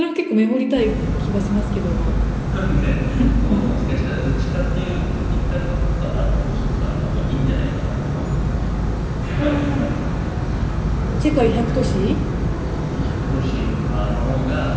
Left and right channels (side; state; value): both; identical; correlation 1.00